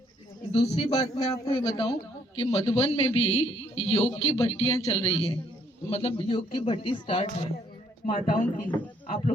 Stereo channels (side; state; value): both; normal; correlation 0.67